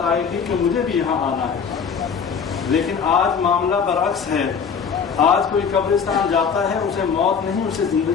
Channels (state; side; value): quieter; right; 6.4 dB